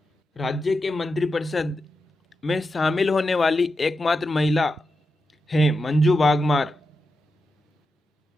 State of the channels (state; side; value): normal; both; correlation 0.88